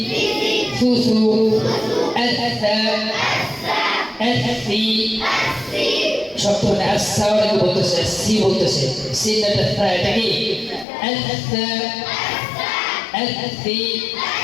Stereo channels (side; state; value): right; drops out; at 10.9 s